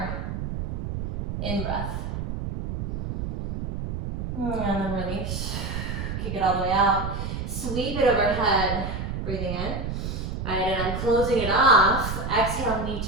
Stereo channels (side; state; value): right; noise; rumble, 4 dB below the sound